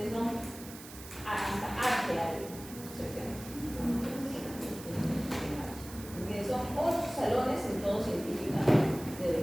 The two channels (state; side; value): noise; right; hiss, 15 dB below the sound